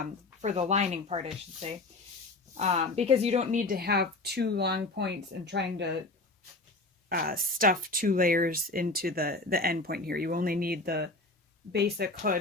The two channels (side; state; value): right; quieter; 3.0 dB